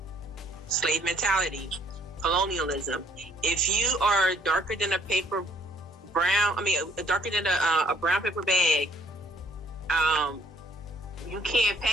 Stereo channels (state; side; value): normal; both; correlation 0.63